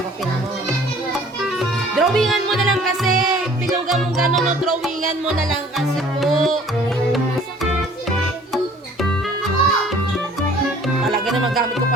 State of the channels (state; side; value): normal; both; correlation 0.53